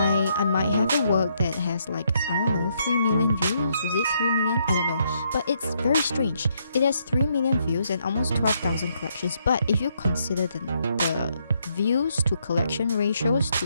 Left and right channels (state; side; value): inverted; both; correlation -0.74